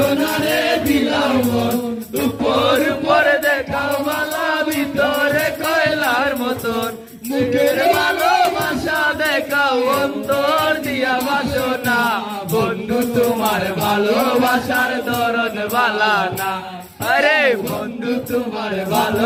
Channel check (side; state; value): both; identical; correlation 1.00